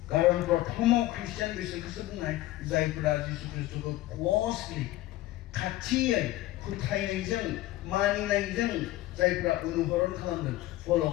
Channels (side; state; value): right; quieter; 16.4 dB